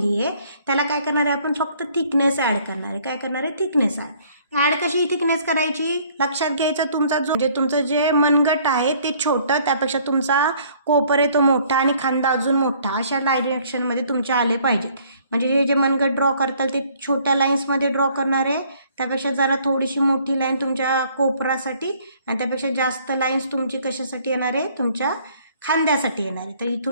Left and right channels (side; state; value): both; inverted; correlation -0.60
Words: आहे त्याला काय करणार आहे आपण फक्त थिकनेस ॲड करणार आहे. काय करणार आहे? थिकनेस ॲड कशी थिकनेस करायची लक्षात घ्यायचं. तुमचं जे मनगट आहे ते छोटं, त्यापेक्षा तुमचा कोपर आहे तो मोठा आणि खांदा अजून मोठा, अशा डायरेक्शनमध्ये तुमचे आले पाहिजेत. म्हणजे हे जे मनगट ड्रॉ करताल ते छोट्या लाईन्समध्ये ड्रॉ करणार आहे, त्यापेक्षा जरा थोडीशी मोठी लाईन तुमच्या कोपरासाठी आणि त्यापेक्षा जास्त लाईन्स तुमची कशासाठी येणार आहे? तुमच्या खांद्यासाठी येणार आहे. तर